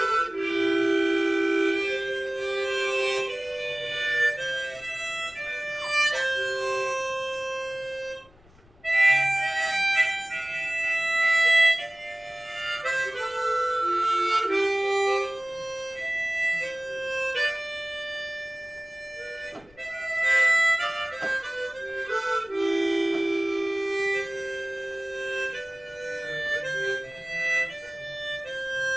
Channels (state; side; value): noise; left; rumble, 28 dB below the sound